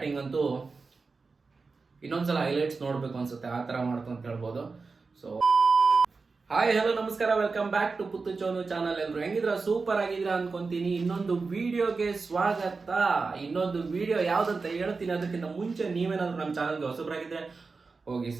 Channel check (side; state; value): left; quieter; 4.3 dB